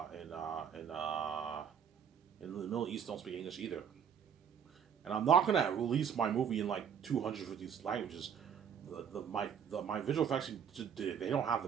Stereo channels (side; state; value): left; quieter; 7.9 dB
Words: Middle East don't speak English either. And I'm not gonna release my movie in like 250 languages. My visual effects, they don't have